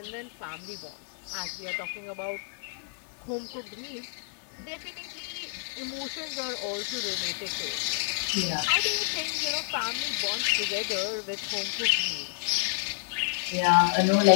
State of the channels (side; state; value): right; silent; 58 dB below the other